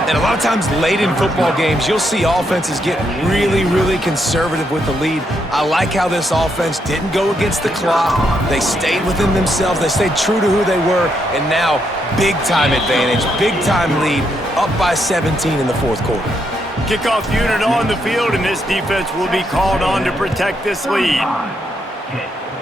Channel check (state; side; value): normal; both; correlation 0.78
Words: And a lot of times late in football games, you'll see offenses get really, really conservative with the lead. I like how this offense didn't go against the clock. They stayed within themselves. They stayed true to who they were. And now, big-time advantage, big-time lead, up by 17 in the 4th quarter. Kickoff unit on the field, and this defense will be called on to protect this lead.